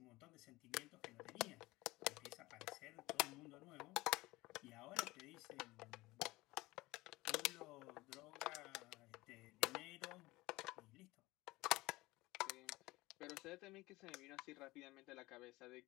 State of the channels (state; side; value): quieter; right; 20.3 dB